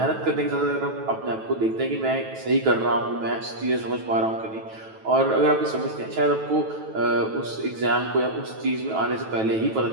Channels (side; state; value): left; late; 9.2 ms